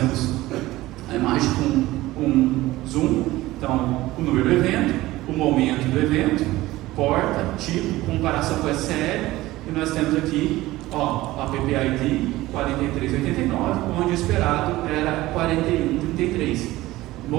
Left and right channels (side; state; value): left; quieter; 17.6 dB